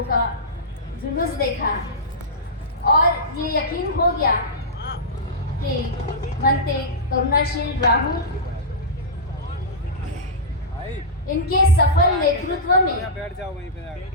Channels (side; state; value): both; normal; correlation -0.14